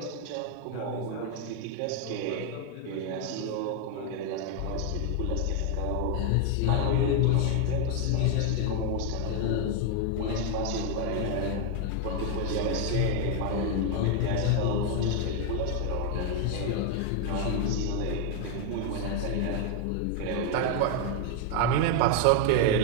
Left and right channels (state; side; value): different; both; correlation 0.01